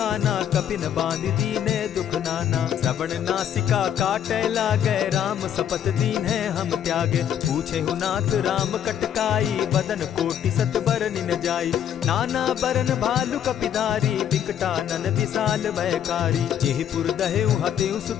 कपिन बांध दीने दुख नाना। श्रवण नासिका काटे लागे, राम सपत दीन है हम त्यागे। पूछे हु नाथ राम कटकाई, बदन कोटि सत बरन न जाई। नाना बरन भालु कपिधारी, विकटानन विशाल भयकारी। जेहिपुर दहेउ हतेउ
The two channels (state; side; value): quieter; right; 9.6 dB